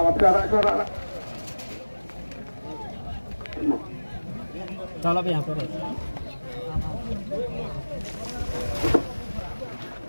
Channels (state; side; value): inverted; both; correlation -1.00